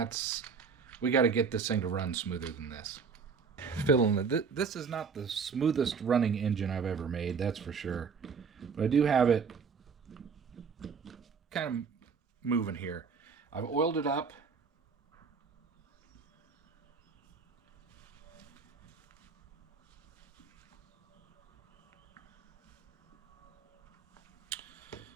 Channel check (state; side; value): quieter; left; 5.7 dB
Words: We got to get this thing to run smoother than this. Fiddling it. This is not the smoothest running engine I've ever made, that's for sure. But I do have it kind of moving here. I've oiled it up.